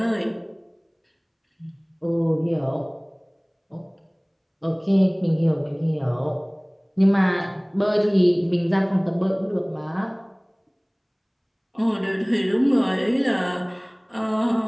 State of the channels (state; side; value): identical; both; correlation 1.00